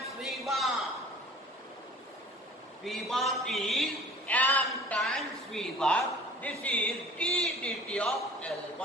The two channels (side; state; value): both; normal; correlation 0.46